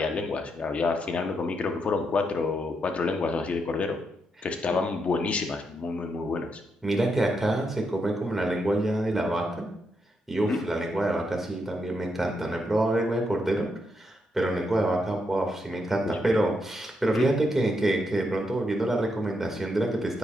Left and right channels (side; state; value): both; normal; correlation 0.81